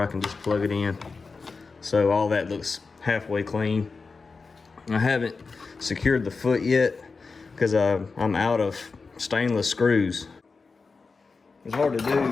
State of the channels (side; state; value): right; quieter; 4.4 dB